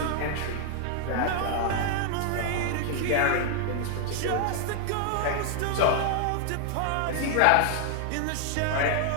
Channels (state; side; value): different; both; correlation 0.00